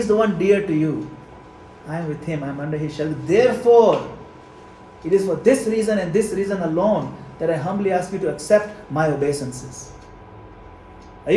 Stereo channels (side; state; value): both; identical; correlation 1.00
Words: the one dear to you. I am with him, I am under his shelter. Therefore, it is for this reason and this reason alone that I humbly ask you to accept my obeisances. Are